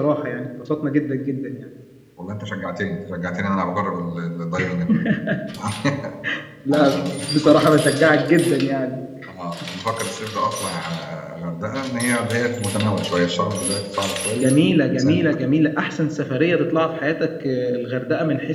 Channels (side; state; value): both; identical; correlation 1.00